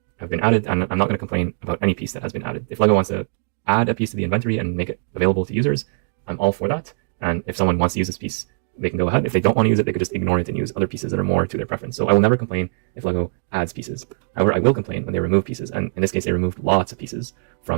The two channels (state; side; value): silent; left; digital silence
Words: have been added, and I'm not going to complain about any piece that has been added. If LEGO wants to add a piece to the inventory and make it available to users, I'm all for that. And if someone wants to use this piece, they can go ahead. If they don't want to use it, they could just ignore it and use other pieces that are more to their preference. So I will never complain if LEGO adds pieces. However, I will complain when they remove pieces. And in this case, they removed lots of pieces